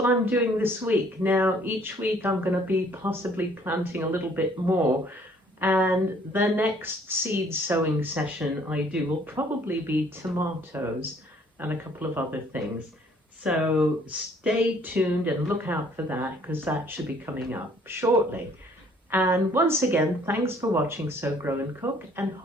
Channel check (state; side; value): normal; both; correlation 0.60